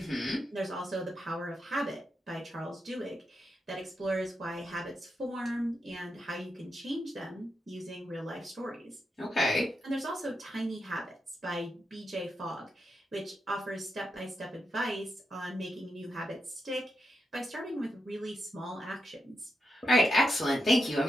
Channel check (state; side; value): normal; both; correlation 0.85